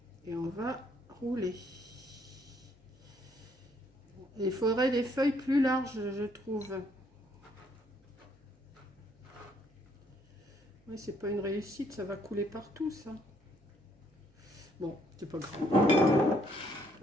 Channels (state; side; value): normal; both; correlation 0.68